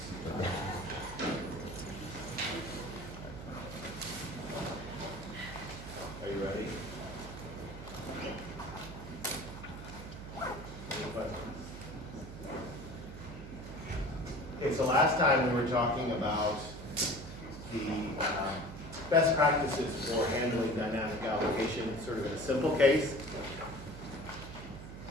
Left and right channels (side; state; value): right; noise; hum, 11 dB below the sound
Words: you ready? Any questions? Okay, so last time we were talking about the best practices for handling dynamic allocation, sort of in a simple case.